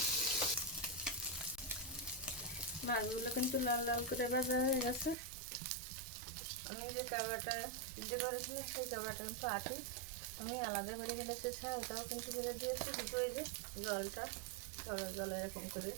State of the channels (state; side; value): drops out; left; at 5.2 s